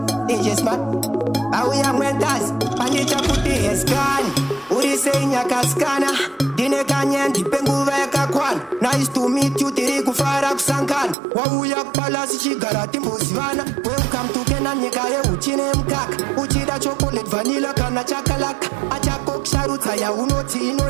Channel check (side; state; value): left; drops out; at 11.2 s